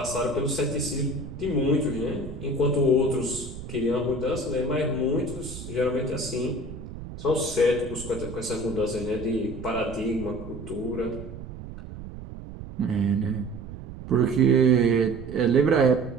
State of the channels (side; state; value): right; noise; rumble, 12 dB below the sound